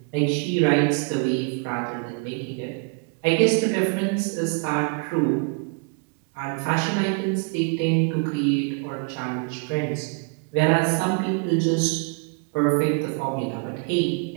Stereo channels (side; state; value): left; quieter; 34.9 dB